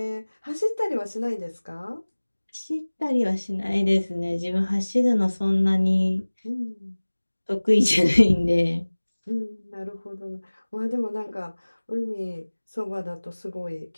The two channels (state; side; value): inverted; both; correlation -1.00